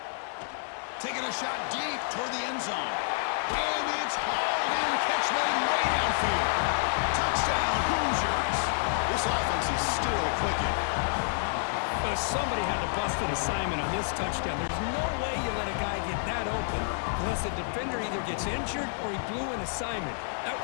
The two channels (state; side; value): silent; right; digital silence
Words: Taking a shot deep toward the end zone. And it's hauled in. Catch made way downfield. Touchdown, Hoosiers. This offense is still clicking. But somebody had to bust an assignment on this touchdown. There's no way you let a guy get that open unless the defender either gets injured or he blew an assignment. That